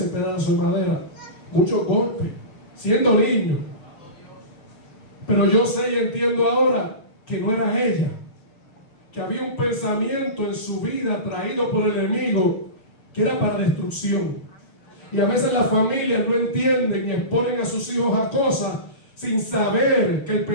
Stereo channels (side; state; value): right; late; 6.5 ms